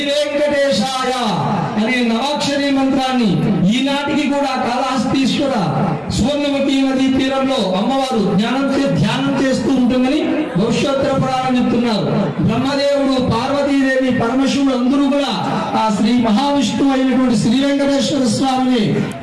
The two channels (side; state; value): both; identical; correlation 1.00